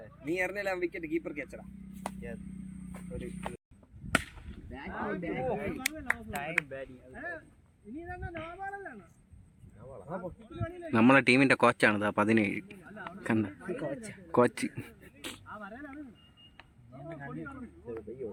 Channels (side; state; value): both; identical; correlation 1.00